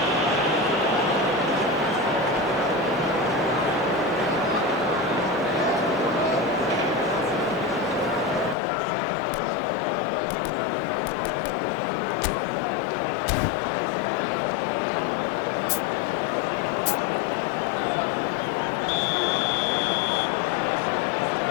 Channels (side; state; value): right; drops out; at 8.6 s